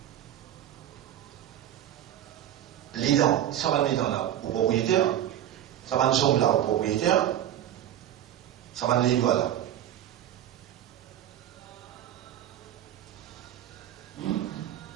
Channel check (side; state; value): left; quieter; 11.5 dB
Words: Les dents, ça va mettre dans là au propriétaire. Ça va nous sommes là au propriétaire. Ça va nous les là.